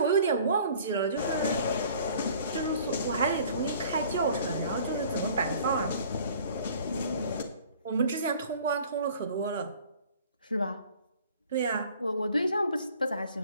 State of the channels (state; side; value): inverted; both; correlation -0.51